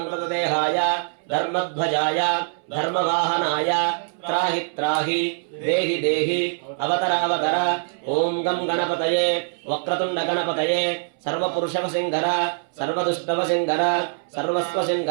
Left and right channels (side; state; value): left; silent; 63 dB below the other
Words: देहाय धर्मध्वजाय धर्मवाहनाय त्राहि त्राहि देहि देहि अवतर अवतर ओम गम गणपतये वक्रतुंड गणपतये सर्वपुरुषवसिंहर सर्वदुष्टवसिंहर